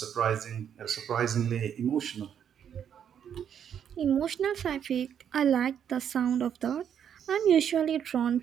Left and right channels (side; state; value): left; quieter; 8.7 dB